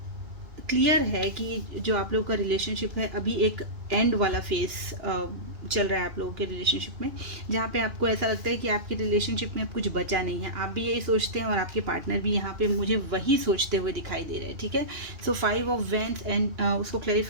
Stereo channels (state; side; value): late; left; 2.5 ms